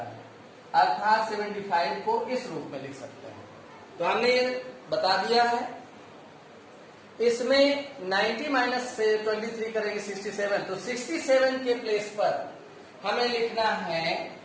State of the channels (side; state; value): both; identical; correlation 1.00